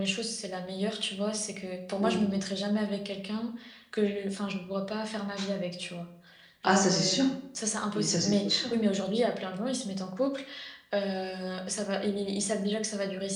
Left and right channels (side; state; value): both; identical; correlation 1.00